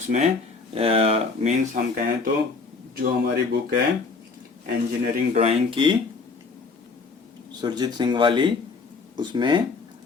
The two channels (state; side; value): quieter; right; 4.4 dB